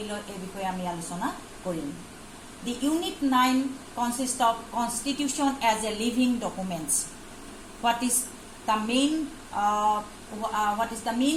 লয় এই বিষয়ে আমি আলোচনা কৰিম The Unit 9 consists of Constitution as a living documents. What is the main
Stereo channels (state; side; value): identical; both; correlation 1.00